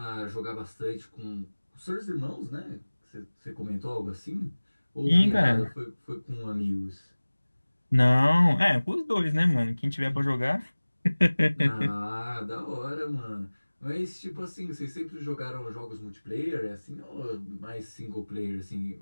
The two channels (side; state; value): both; inverted; correlation -1.00